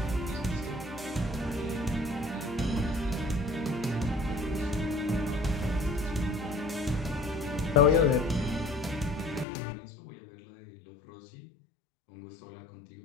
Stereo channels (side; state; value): right; drops out; at 9.5 s